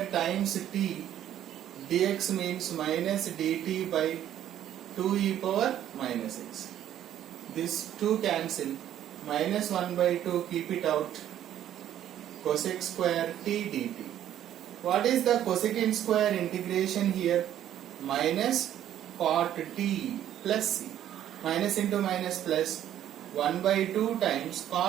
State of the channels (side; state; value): left; quieter; 11.3 dB